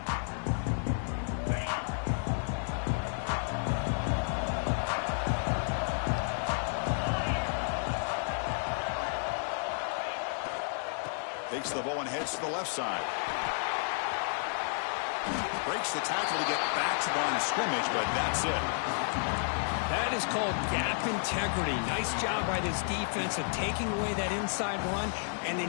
Takes the ball and heads to the left side. Breaks the tackle to get back to the line of scrimmage, but that's it. That is called gap integrity. Nice job by this defense of taking away that inside run and then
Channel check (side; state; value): right; silent; 57 dB below the other